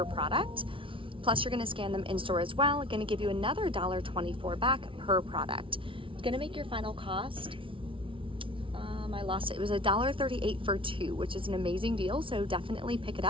product. Plus you're gonna scan them in store as well, gonna give you another $1.24 back per product. It's gonna make your final cost, I lost it. It was $1.38 for 2, which is an amazing deal, so definitely pick it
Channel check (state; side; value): late; left; 0.25 ms